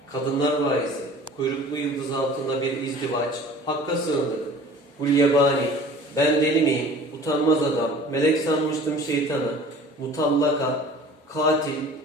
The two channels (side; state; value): both; normal; correlation 0.46